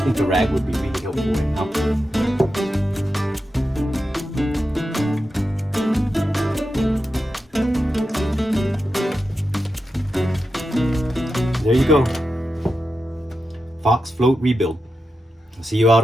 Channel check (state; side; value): normal; both; correlation 0.89